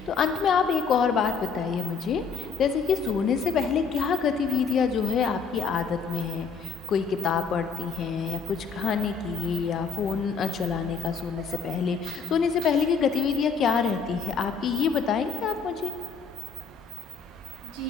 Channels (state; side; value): quieter; right; 5.6 dB